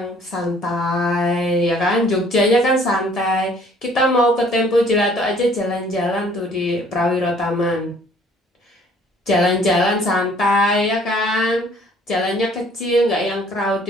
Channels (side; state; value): both; normal; correlation 0.57